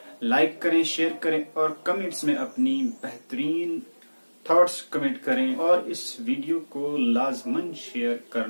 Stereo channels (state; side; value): inverted; both; correlation -1.00